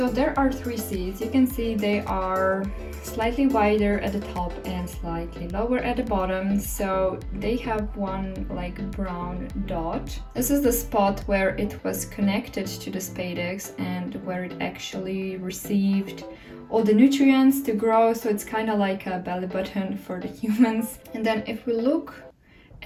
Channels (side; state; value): both; identical; correlation 1.00